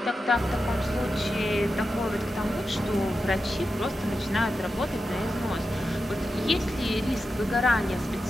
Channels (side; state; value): both; normal; correlation 0.90